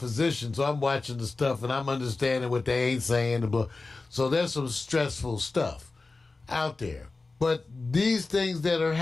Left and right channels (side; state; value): right; quieter; 3.6 dB